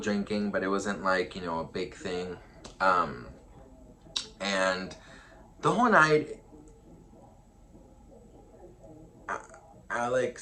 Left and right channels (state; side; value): identical; both; correlation 1.00